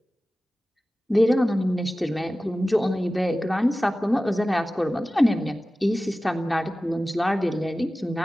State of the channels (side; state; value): both; normal; correlation 0.96